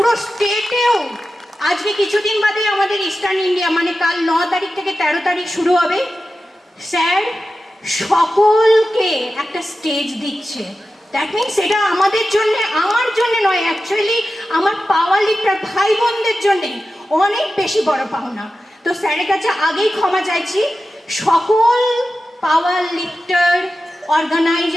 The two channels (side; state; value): both; normal; correlation 0.93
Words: স্টেটেও আজকে কিছুদিন বাদে আমাদের ইস্টার্ন ইন্ডিয়া মানে কাল 9 তারিখ থেকে 13 তারিখ শুরু হবে, স্যার সকলকে একটা স্টেজ দিচ্ছে। দ্যাট মিনস এটা আমাদের জন্য, আমার জন্য নয়, অ্যাকচুয়ালি আমার পাওয়ার লিফটার ভাই বোনদের জন্যে অনেক বেশি বড় পাওনা। তো স্যারের কাছে আগেই ক্ষমা চাইছি, সকল পাওয়ার লিফটার